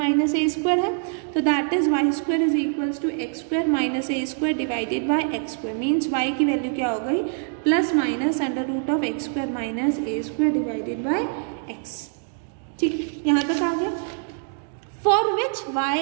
a² है, तो that is y² is equals to x² minus a² divided by x², means y की वैल्यू क्या हो गई, +-√x² minus a² divided bye x। ठीक, यहाँ तक आ गया। For which y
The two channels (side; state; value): left; silent; 56 dB below the other